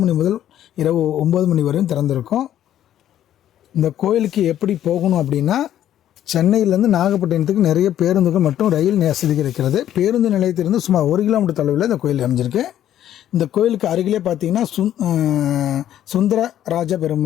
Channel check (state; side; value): quieter; right; 11.4 dB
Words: மணி முதல் இரவு 9 மணி வரையும் திறந்திருக்கும். இந்த கோயிலுக்கு எப்படி போகணும் அப்படின்னா, சென்னையிலேருந்து நாகப்பட்டினத்துக்கு நிறைய பேருந்துகள் மற்றும் ரயில் வசதிகள் இருக்கிறது. பேருந்து நிலையத்திலிருந்து சுமார் 1 கிலோமீட்டர் தொலைவில் இந்த கோயில் அமைஞ்சிருக்கு. இந்த கோயிலுக்கு அருகிலே பார்த்தீங்கன்னா சுந்தரராஜ